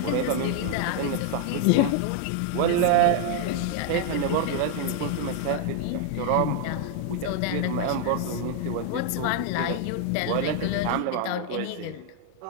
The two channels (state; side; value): different; both; correlation 0.00